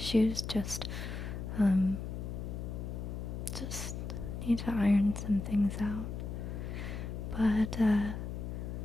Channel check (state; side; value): noise; left; hum, 6 dB below the sound